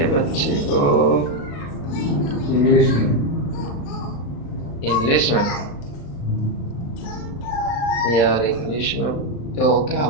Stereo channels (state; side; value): late; right; 35 ms